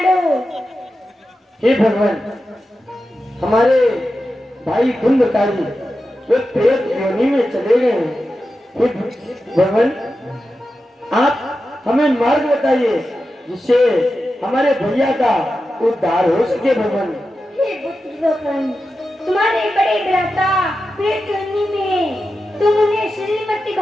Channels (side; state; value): both; normal; correlation 0.91